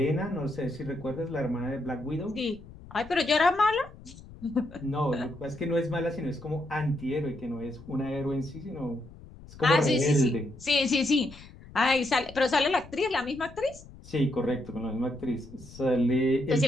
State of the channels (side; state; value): left; noise; rumble, 18 dB below the sound